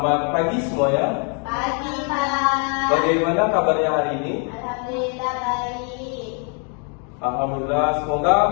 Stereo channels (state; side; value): quieter; right; 39.5 dB